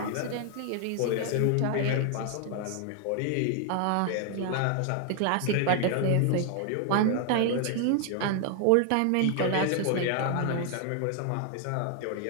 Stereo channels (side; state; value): both; different; correlation 0.00